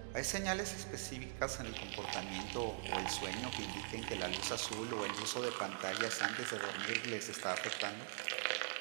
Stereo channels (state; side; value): silent; left; digital silence